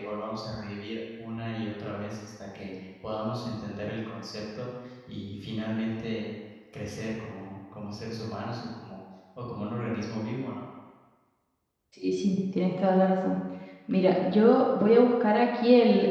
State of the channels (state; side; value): identical; both; correlation 1.00